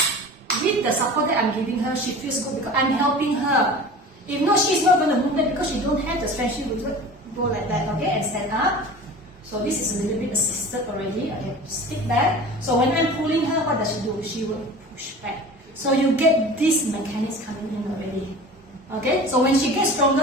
With the support that I'm giving her, she feels good because I'm helping her. If not, she's not going to move back because she don't have the strength. She will go like that, okay, and stand up. So this is a little bit assisted already. Okay, stick back. So when I'm pulling her, what does she do? She will push back. So you get these mechanics coming in already. Okay, so when she gets stronger,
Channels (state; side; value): normal; both; correlation 0.38